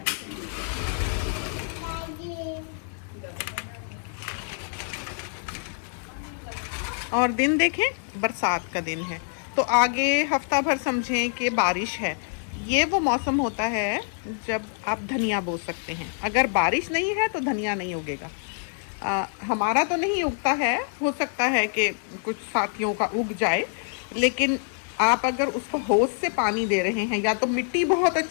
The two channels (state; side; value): silent; right; digital silence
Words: और दिन देखें, बरसात का दिन है, तो आगे हफ्ता भर समझें कि बारिश है। ये वो मौसम होता है जब आप धनिया बो सकते हैं। अगर बारिश नहीं है तो धनिया नहीं उगेगा। हमारा तो नहीं उगता है, हो सकता है कि कुछ साथियों का उग जाए, लेकिन आप अगर उसको होश से पानी दे रहे हैं, या तो मिट्टी बहुत